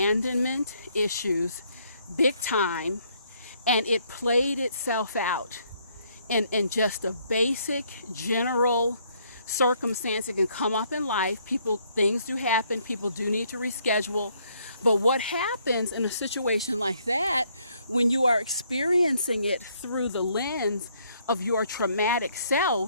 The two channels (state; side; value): inverted; both; correlation -0.68